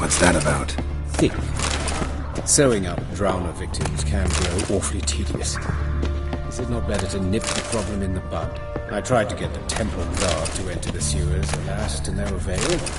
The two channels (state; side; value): identical; both; correlation 1.00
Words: that about? Think. Sewing up drowner victims can grow awfully tedious. Is it not better to nip the problem in the bud? I tried to get the Temple Guard to enter the sewers, alas, to no avail.